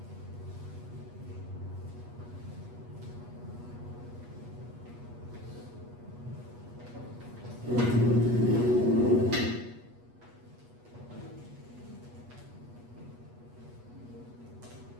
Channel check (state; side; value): late; left; 8.3 ms